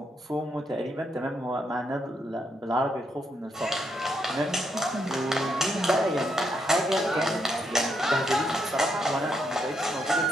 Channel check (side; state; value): both; normal; correlation 0.78